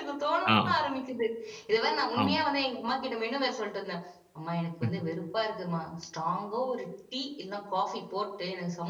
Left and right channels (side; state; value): both; identical; correlation 1.00